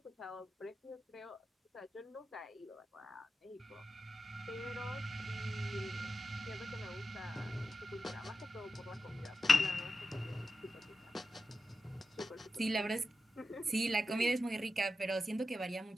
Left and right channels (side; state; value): both; normal; correlation 0.90